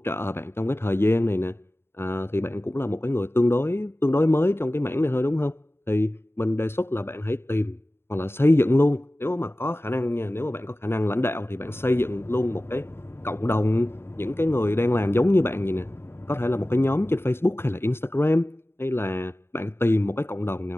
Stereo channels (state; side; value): late; right; 0.11 ms